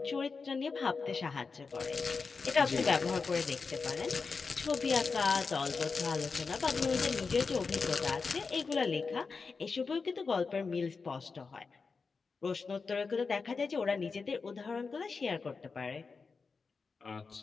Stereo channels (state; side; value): quieter; right; 4.7 dB